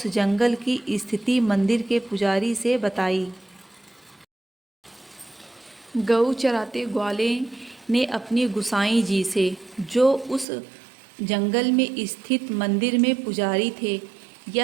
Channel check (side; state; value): left; drops out; at 10.5 s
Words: जंगल की स्थिति मंदिर के पुजारी से बताई। गऊ चराते ग्वाले ने अपनी गुसाई जी से, जो उस जंगल में स्थित मंदिर में पुजारी थे,